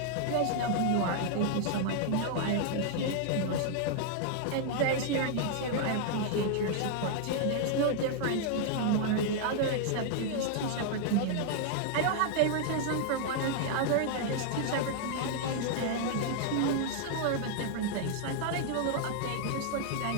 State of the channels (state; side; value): different; both; correlation 0.00